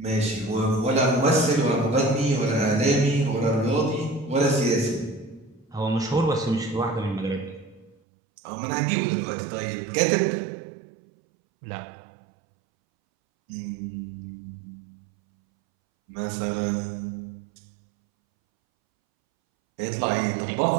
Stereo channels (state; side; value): drops out; left; at 8.0 s